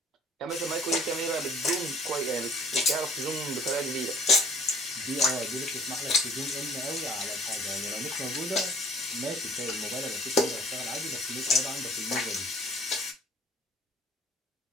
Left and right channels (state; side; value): normal; both; correlation 0.53